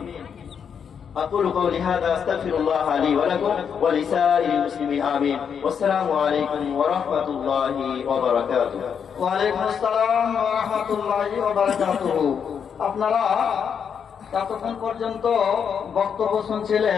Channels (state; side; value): quieter; right; 7.2 dB